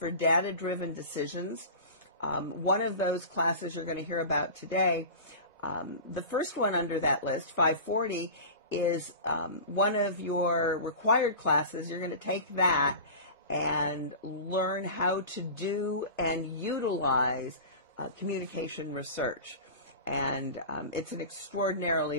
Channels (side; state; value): both; inverted; correlation -0.32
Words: data-driven decisions. One of those classes you're going to hear about today, the first one under that list, 540, is one of your required classes. You're going to take that and learn how to do and utilize communication research. And it's an extraordinarily